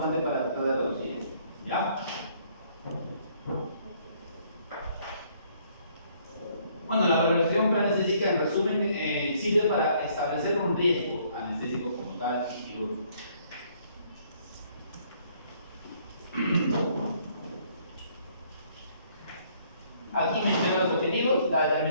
para tratar de reducir esto, ¿ya? Bueno, la valoración preanestésica, en resumen, sirve para establecer un riesgo anestésico como tal y quirúrgico. Aquí menciono los objetivos, la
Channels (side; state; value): both; inverted; correlation -0.64